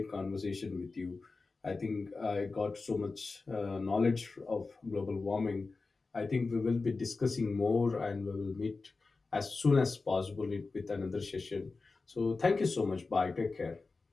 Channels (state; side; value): quieter; right; 3.9 dB